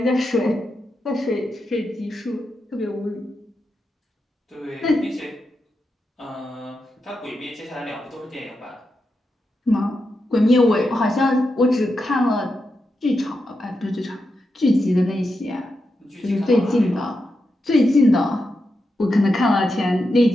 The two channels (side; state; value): both; normal; correlation 0.87